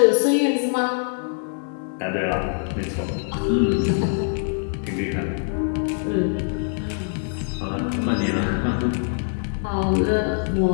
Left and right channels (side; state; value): right; silent; digital silence